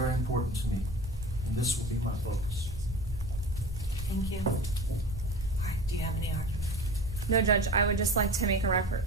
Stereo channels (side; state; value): both; normal; correlation 0.34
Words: important to me, and this will be my focus. Thank you. All right, do you have any argument? No, Judge, I would just like to make a